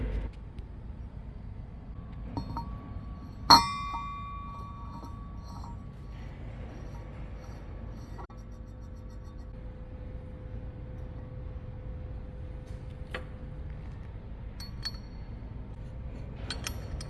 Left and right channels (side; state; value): both; identical; correlation 1.00